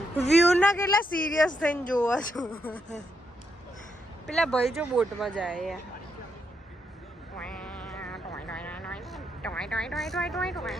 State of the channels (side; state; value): both; normal; correlation 0.79